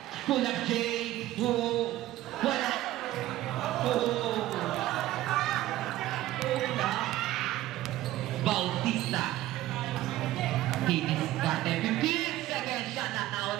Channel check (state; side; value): quieter; left; 15.2 dB